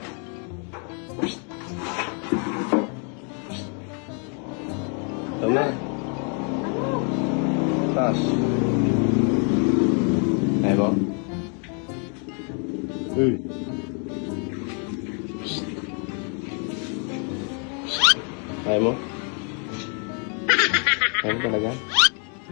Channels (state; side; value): quieter; right; 39.7 dB